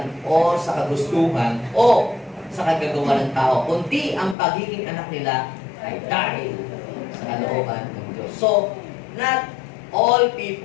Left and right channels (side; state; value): right; drops out; at 4.4 s